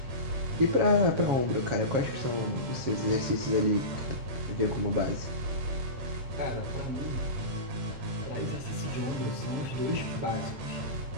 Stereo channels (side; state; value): left; late; 7.4 ms